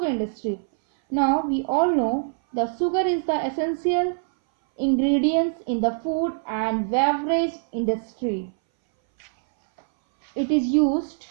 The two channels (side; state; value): left; silent; 61 dB below the other